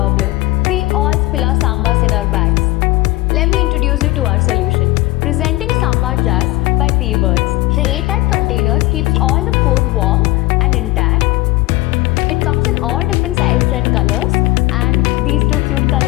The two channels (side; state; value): right; quieter; 20.0 dB